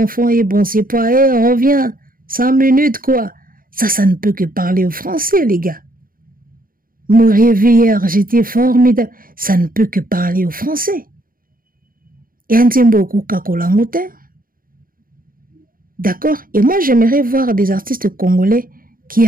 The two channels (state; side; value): late; left; 0.41 ms